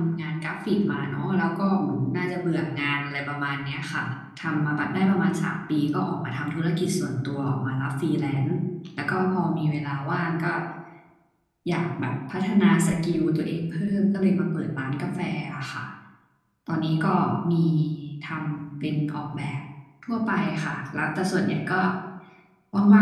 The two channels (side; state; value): both; identical; correlation 1.00